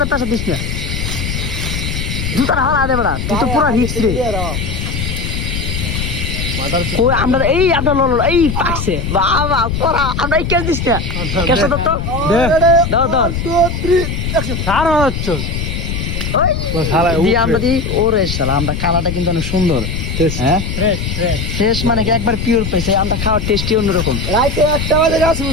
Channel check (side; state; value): left; noise; rumble, 3 dB below the sound